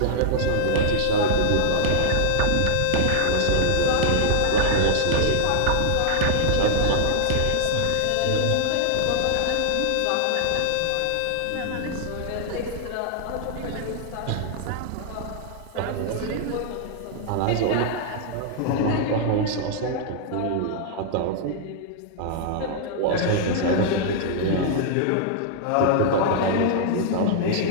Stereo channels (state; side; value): different; both; correlation -0.01